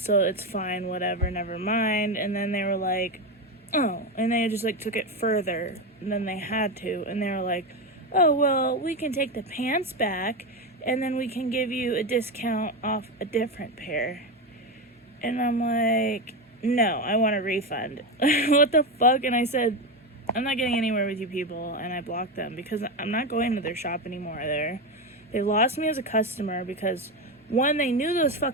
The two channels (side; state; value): both; normal; correlation 0.14